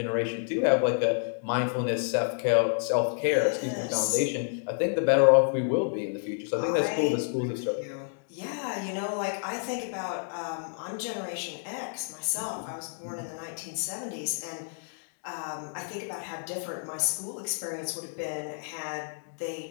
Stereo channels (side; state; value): right; silent; digital silence